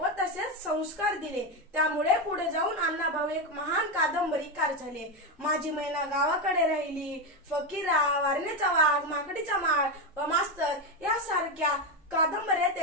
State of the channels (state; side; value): normal; both; correlation 0.11